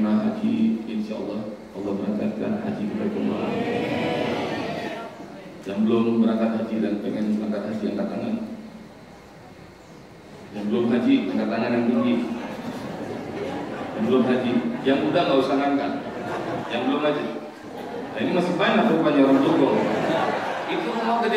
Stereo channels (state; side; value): identical; both; correlation 1.00